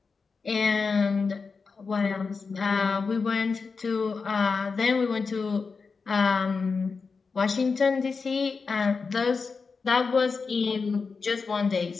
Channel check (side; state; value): right; quieter; 4.8 dB